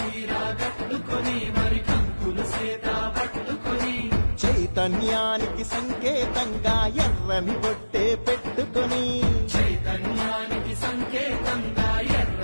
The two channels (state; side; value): inverted; both; correlation -1.00